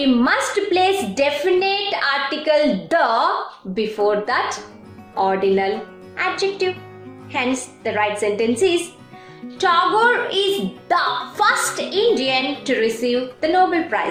must place definite article the before that ordinal adjective. Hence the right sentence is, Tagore is the first Indian to receive the Nobel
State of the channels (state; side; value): identical; both; correlation 1.00